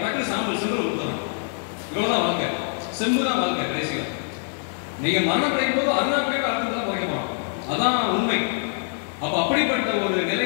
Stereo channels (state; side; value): silent; right; 62 dB below the other